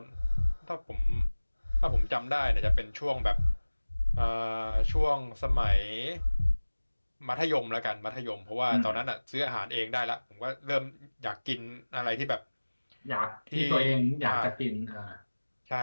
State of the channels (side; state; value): both; inverted; correlation -1.00